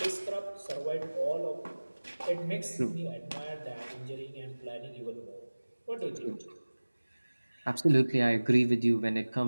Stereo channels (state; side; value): inverted; both; correlation -1.00